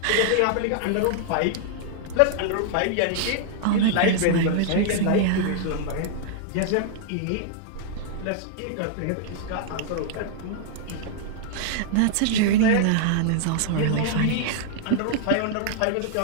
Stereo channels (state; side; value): different; both; correlation -0.01